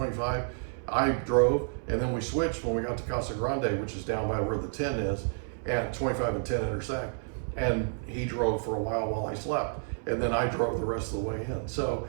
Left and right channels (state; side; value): silent; left; 58 dB below the other